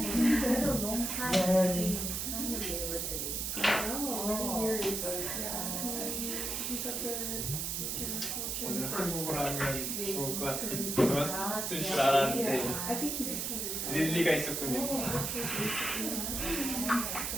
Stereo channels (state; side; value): noise; right; hiss, 2 dB below the sound